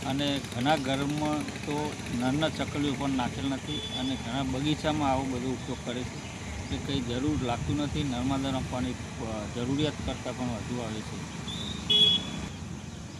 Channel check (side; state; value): both; identical; correlation 1.00